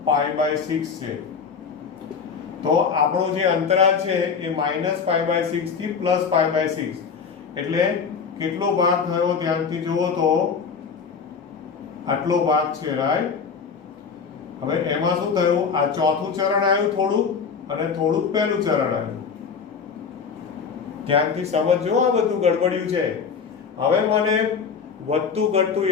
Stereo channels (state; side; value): quieter; right; 6.0 dB